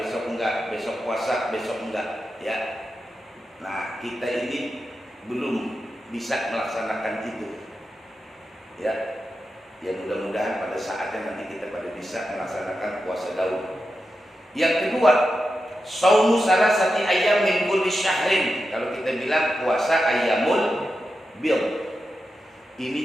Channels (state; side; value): normal; both; correlation 0.89